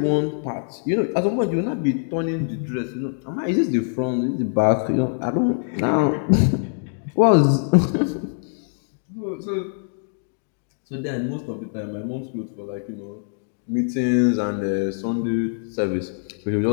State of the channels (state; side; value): silent; right; digital silence